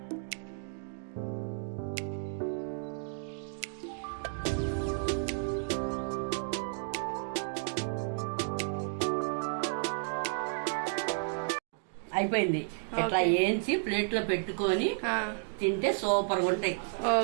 అయిపోయింది. ఇట్లా వేయించి ప్లేట్ లో పెట్టుకొని తింటే సూపర్ గా ఉంటాయి.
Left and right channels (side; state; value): left; silent; digital silence